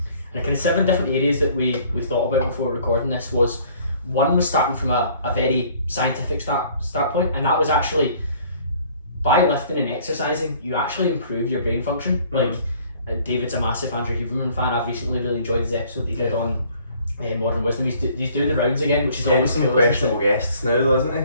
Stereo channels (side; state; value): both; inverted; correlation -0.56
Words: the kind of 7 different areas that we thought about before recording this was, one was starting from a very scientific start point, and that was actually by lifting and exercising, you actually improve your brain function. Like David's a massive Andrew Huberman fan. I've recently really enjoyed his episode he did on Modern Wisdom. He's doing the rounds again, which is always some cool, questionable guests now though, isn't